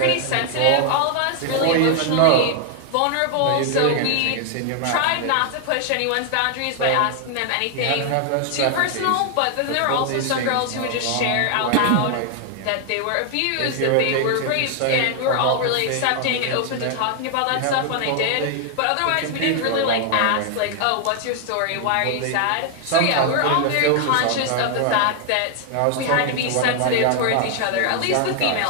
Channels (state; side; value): different; both; correlation 0.00